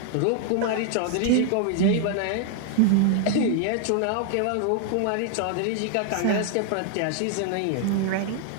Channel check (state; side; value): different; both; correlation 0.00